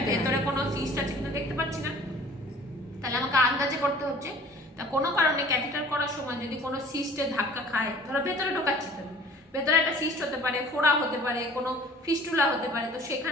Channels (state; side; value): normal; both; correlation 0.49